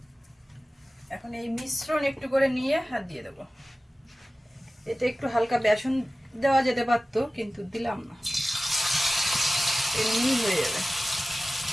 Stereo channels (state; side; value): normal; both; correlation 0.96